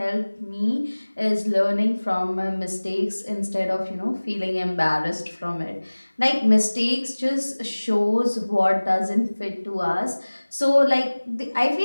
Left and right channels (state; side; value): inverted; both; correlation -1.00